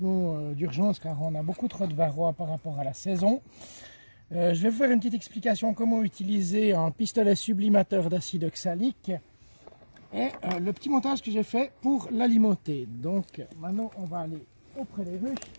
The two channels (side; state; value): both; inverted; correlation -1.00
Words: d'urgence car on a beaucoup trop de varroa par rapport à la saison. Je vais vous faire une petite explication comment utiliser un pistolet sublimateur d'acide oxalique et le petit montage que j'ai fait pour l'alimenter. Donc maintenant on va aller auprès des ruches.